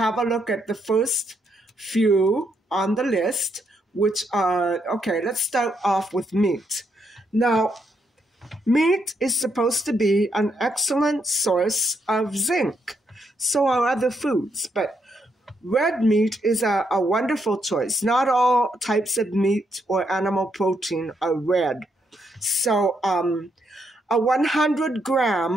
a look at the first few on the list, which are, okay, let's start off with meat. Now, meat is supposed to be an excellent source of zinc. So are other foods, but red meat is a wonderful choice. Not all types of meat or animal protein are red. So a 100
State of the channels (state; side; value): normal; both; correlation 0.77